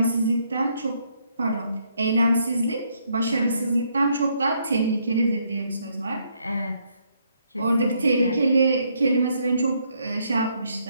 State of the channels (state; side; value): inverted; both; correlation -0.72